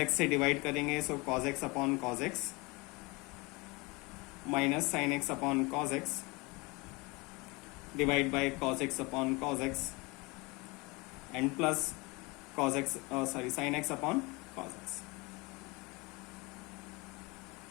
से डिवाइड करेंगे, so cos x upon cos x minus sine x upon cos x divide by cos x upon cos x and plus sine x upon cos x।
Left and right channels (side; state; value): right; quieter; 25.9 dB